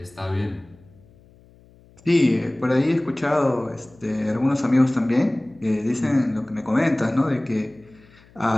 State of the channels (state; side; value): noise; left; hum, 27 dB below the sound